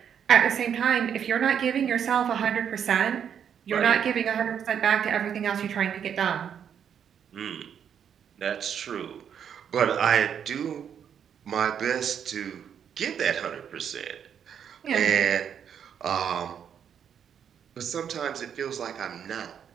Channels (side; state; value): left; quieter; 8.3 dB